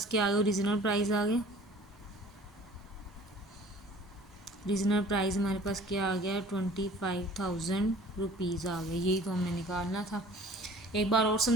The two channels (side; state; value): both; normal; correlation 0.49